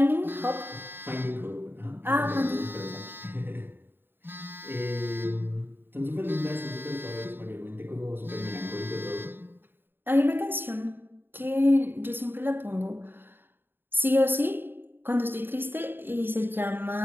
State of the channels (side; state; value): left; late; 0.099 ms